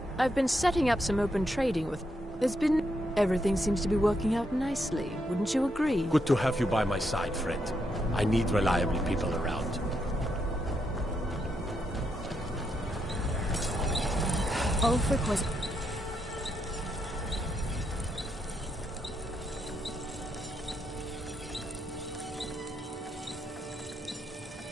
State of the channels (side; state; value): both; normal; correlation 0.80